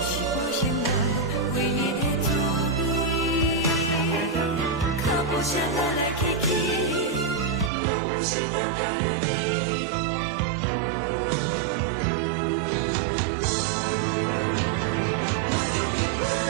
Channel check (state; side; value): drops out; left; at 7.7 s